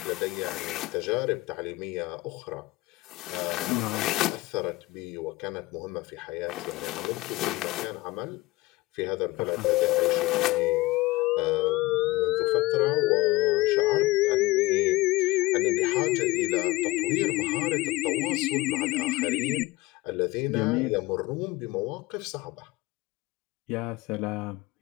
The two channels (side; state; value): right; quieter; 20.6 dB